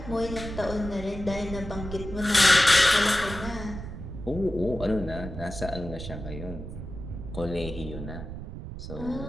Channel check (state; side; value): noise; right; rumble, 9 dB below the sound